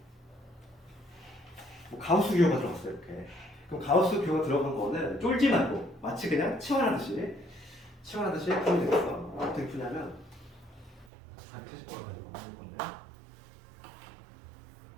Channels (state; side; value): drops out; left; at 11.1 s